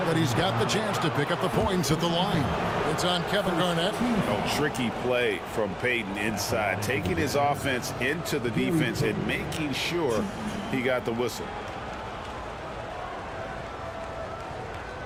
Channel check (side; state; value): both; identical; correlation 1.00